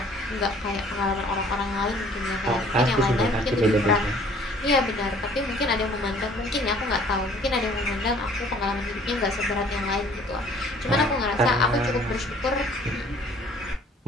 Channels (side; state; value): both; normal; correlation 0.55